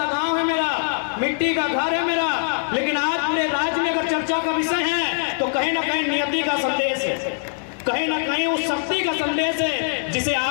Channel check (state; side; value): silent; right; 64 dB below the other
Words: गांव है मेरा, मिट्टी का घर है मेरा, लेकिन आज पूरे राज्य में अगर चर्चा का विषय है तो कहीं ना कहीं नियति का संदेश है, कहीं ना कहीं उस शक्ति का संदेश है जिसे